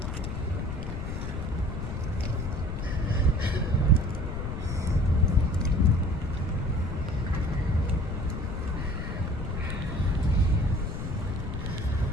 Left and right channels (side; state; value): left; noise; rumble, 4 dB below the sound